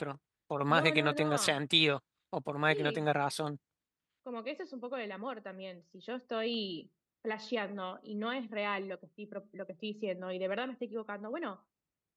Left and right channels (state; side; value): identical; both; correlation 1.00